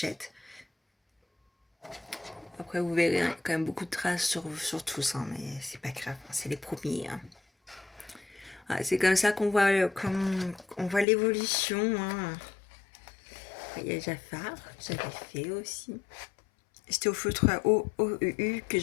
Après, vous verrez, il y a quand même beaucoup de traces sur tous, hein, mais c'est pas grave, c'est les premiers, hein. Ah, c'est comme ça qu'on voit, on voit l'évolution, hein. Il y a Jafar, que j'avais fait aussi. C'était au feutre à OEU que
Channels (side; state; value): right; drops out; at 11.1 s